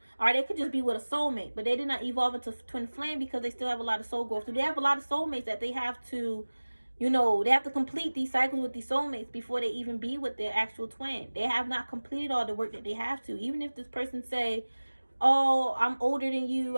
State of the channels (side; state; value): both; inverted; correlation -1.00